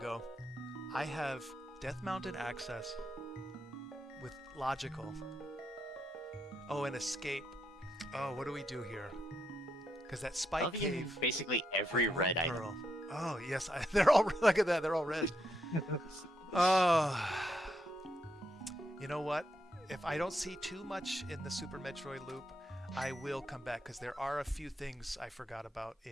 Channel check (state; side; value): normal; both; correlation 0.80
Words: I have Death Mountain access with logical. Oh, an escape. Oh, what do we do here? Because that spike cave. Basically every red item. Pearl. Oh yes, they're all look at that. They're all red. Oh, you know what? If I don't see too much in the Super Metroid loop, I will come back because there are a few things I forgot about